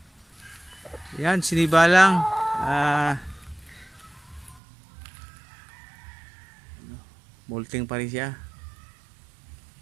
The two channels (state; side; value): drops out; left; at 4.6 s